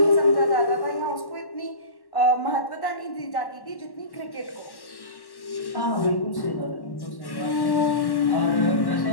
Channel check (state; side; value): late; right; 1.1 ms